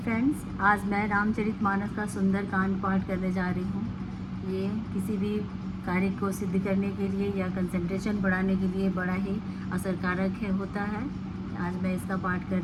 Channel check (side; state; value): both; identical; correlation 1.00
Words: आज मैं रामचरितमानस का सुंदर कांड पाठ करने जा रही हूँ। ये किसी भी कार्य को सिद्ध करने के लिए या कंसंट्रेशन बढ़ाने के लिए बड़ा ही असरकारक होता है। आज मैं इसका पाठ कर